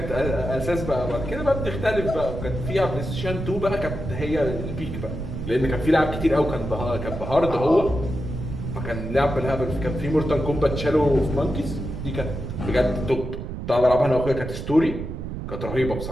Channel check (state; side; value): noise; right; rumble, 6 dB below the sound